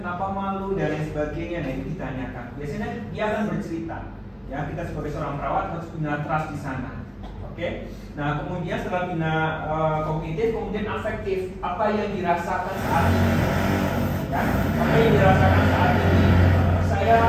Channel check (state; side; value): identical; both; correlation 1.00